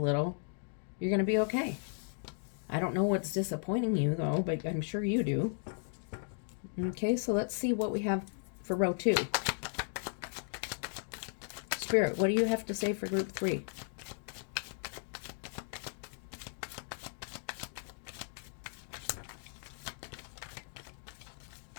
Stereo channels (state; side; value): silent; right; 54 dB below the other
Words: you're going to be okay. I don't know what's disappointing you, though, but I'm sure you do. Okay, so let's see what we have for row 2. Spirit, what do you have to say for group 3?